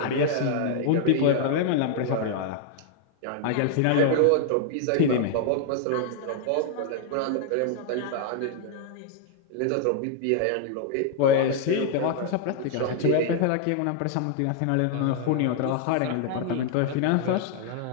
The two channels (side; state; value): both; different; correlation 0.00